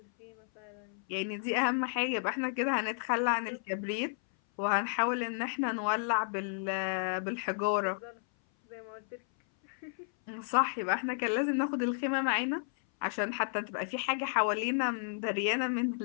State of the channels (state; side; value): silent; right; 56 dB below the other